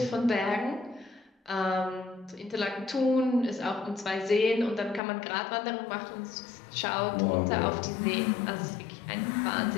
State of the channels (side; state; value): right; drops out; at 5.0 s